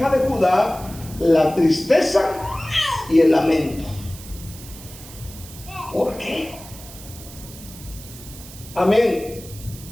de Judá la tristeza y el lamento. ¿Por qué? Amén.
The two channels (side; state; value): right; noise; hiss, 16 dB below the sound